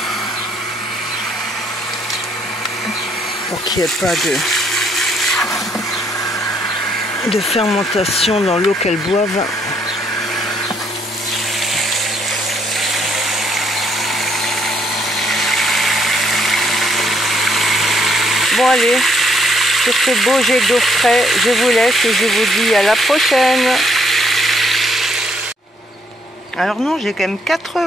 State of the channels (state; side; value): normal; both; correlation 0.69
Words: Pour qu'il n'y ait pas de fermentation dans l'eau qu'elles boivent. Bon allez, sur ce beau jet d'eau frais, je vous laisse et je vous dis à la prochaine. Alors non, j'ai quand même 4